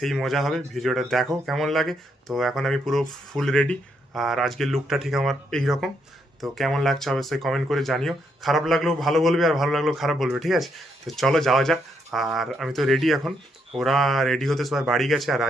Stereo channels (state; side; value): normal; both; correlation 0.77